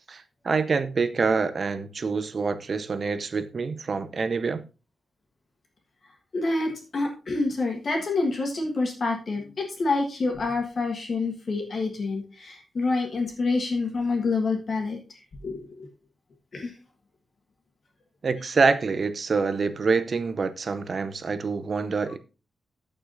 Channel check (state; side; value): normal; both; correlation 0.86